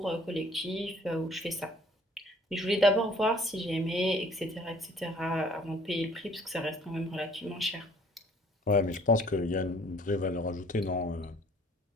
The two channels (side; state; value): both; normal; correlation 0.56